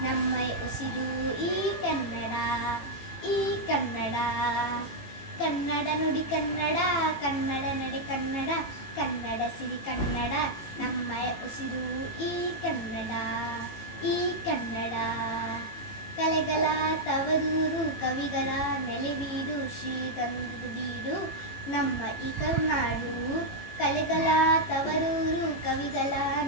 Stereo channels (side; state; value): right; late; 18 ms